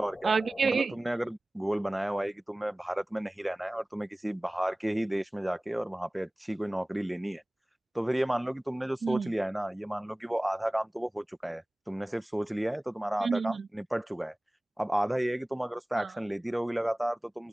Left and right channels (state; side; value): normal; both; correlation 0.98